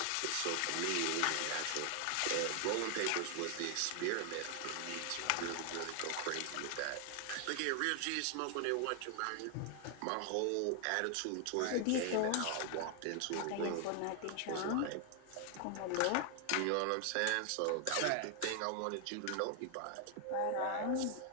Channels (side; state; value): both; different; correlation 0.00